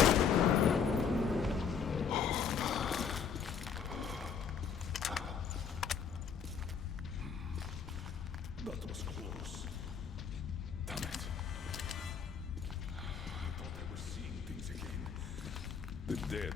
That was close. Damn it. I thought I was seeing things again. The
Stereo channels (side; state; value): right; quieter; 6.7 dB